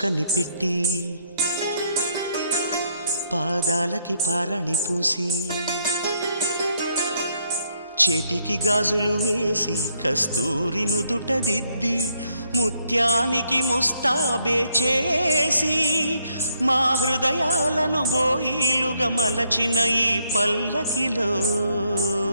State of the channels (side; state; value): both; inverted; correlation -0.74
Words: పెట్టి పాదాలకి పారాణి పూసి చేతికి గాజులు వేసి కస్తూరి నుదుట దిద్ది ముత్యానికి ముస్తాబే చేసి మా హృదయాలను బోయిలుగా మలచిన ఈ పల్లకిలో